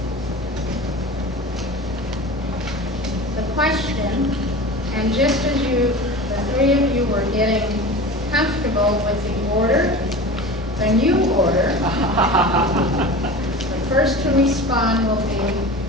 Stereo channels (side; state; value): both; normal; correlation 0.34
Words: The question, and just as the 3 of you were getting comfortable with the order, the new order, the first to respond will be